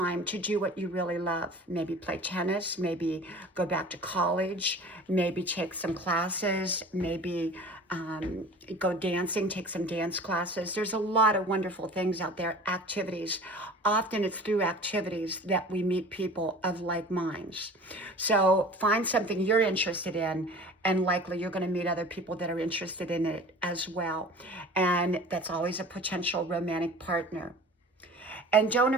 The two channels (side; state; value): both; normal; correlation 0.41